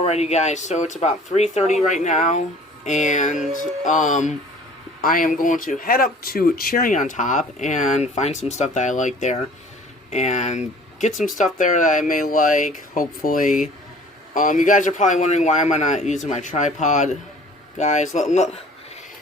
guys, so it's about 3:30 right now, and I am going to head up to Cherry on Top and find some stuff that I like there, and get some stuff there that I may like, hopefully. You guys are probably wondering why am I not using my tripod. Guys, let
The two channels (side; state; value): both; normal; correlation 0.50